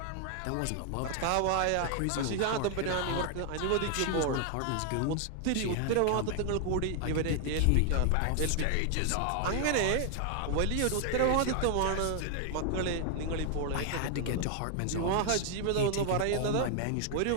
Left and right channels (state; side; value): different; both; correlation 0.00